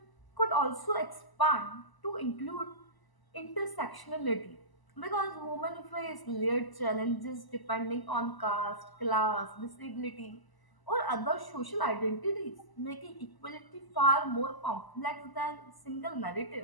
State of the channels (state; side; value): late; right; 1.0 ms